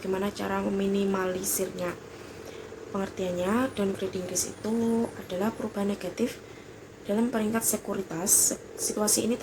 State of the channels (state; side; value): identical; both; correlation 1.00